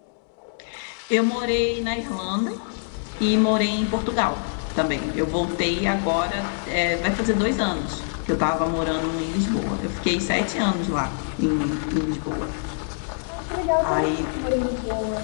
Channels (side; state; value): right; silent; digital silence